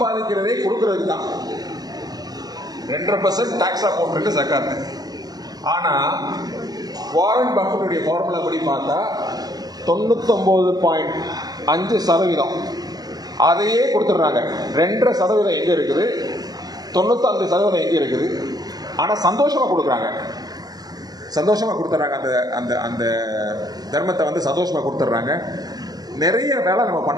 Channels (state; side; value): late; left; 0.19 ms